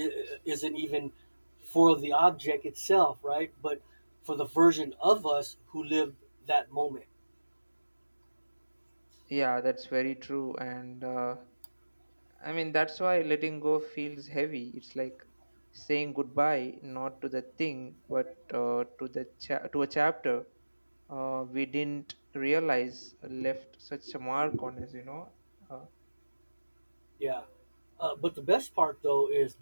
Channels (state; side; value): inverted; both; correlation -1.00